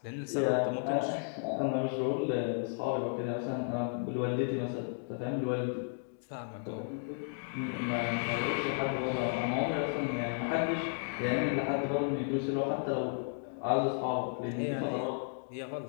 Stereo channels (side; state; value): right; silent; digital silence